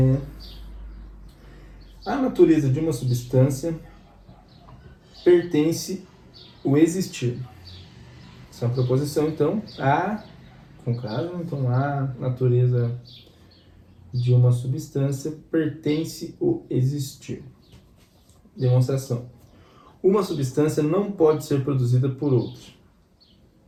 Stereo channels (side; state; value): both; identical; correlation 1.00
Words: A natureza de uma substância pertence o existir. Essa é uma proposição, então, com caso, então a natureza de uma substância pertence o existir. Demonstração. Uma substância não pode ser produzida por outra.